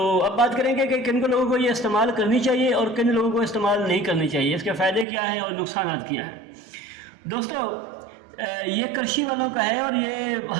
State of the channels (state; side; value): drops out; left; at 5.1 s